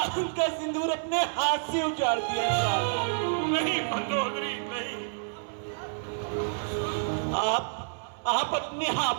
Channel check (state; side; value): silent; left; 59 dB below the other